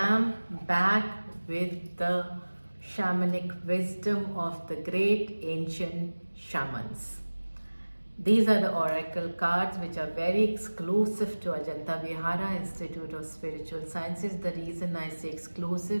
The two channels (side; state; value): both; inverted; correlation -1.00